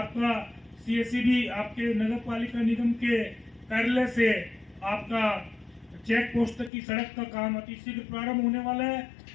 सीएससीबी आपके नगर पालिका निगम के कार्यालय से आपका चेक पोस्ट तक की सड़क का काम अति शीघ्र प्रारंभ होने वाला है,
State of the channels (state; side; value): drops out; right; at 6.7 s